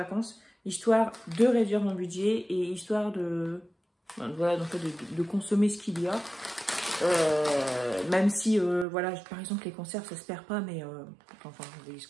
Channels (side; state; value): left; drops out; at 8.8 s